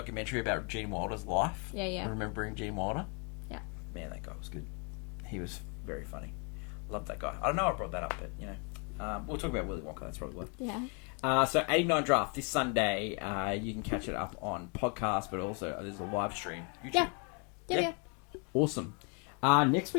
about Gene Wilder's life. Yeah. Remembering Gene Wilder. Yeah. Man, that guy was good. He was very funny. Love that guy. I don't know I brought that up, but, we'll talk about Willy Wonka. That's probably why. Yeah. So 89 Draft this Sunday. You can catch it up on podcast, but also there's a live stream. YouTube. Yeah. Awesome. Next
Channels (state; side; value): quieter; right; 35.7 dB